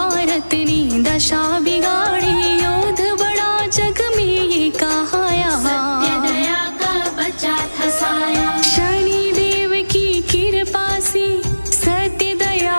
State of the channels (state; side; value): inverted; both; correlation -1.00